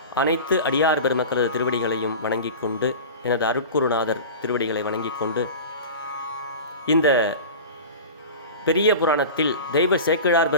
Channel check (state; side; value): inverted; both; correlation -0.33